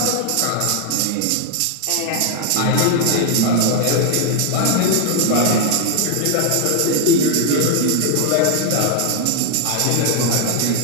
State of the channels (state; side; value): different; both; correlation 0.00